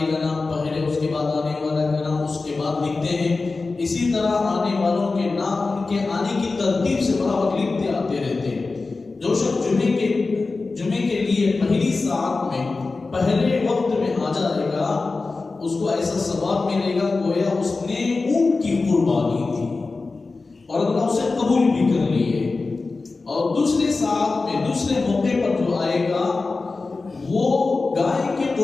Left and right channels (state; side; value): quieter; right; 3.8 dB